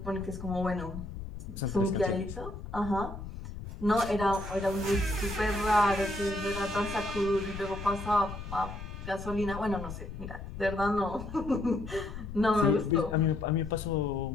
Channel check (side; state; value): left; noise; rumble, 10 dB below the sound